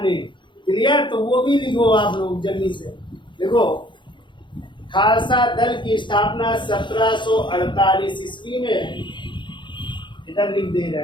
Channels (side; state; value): right; late; 0.23 ms